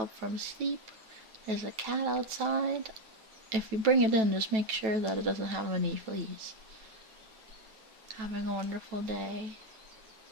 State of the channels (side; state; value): left; late; 9.1 ms